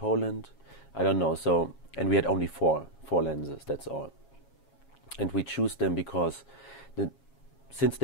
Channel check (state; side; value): late; right; 7.3 ms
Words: I don't know. So, and we had only four lenses, that's all. And we choose them because since